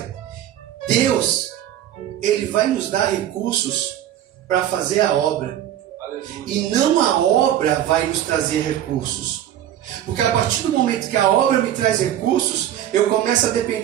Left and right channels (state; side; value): quieter; left; 11.5 dB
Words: Deus, Ele vai nos dar recursos para fazer a obra. E não a obra vai nos trazer recursos. Porque a partir do momento que a obra me traz recursos, eu começo a